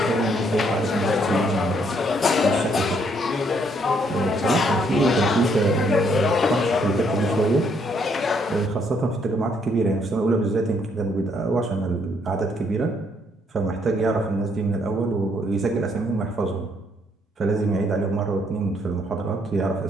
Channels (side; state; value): both; normal; correlation 0.70